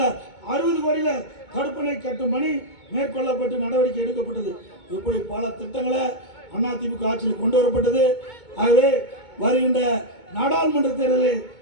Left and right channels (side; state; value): right; late; 2.2 ms